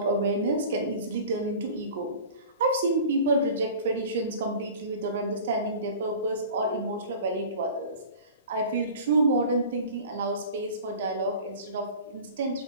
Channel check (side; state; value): both; inverted; correlation -0.40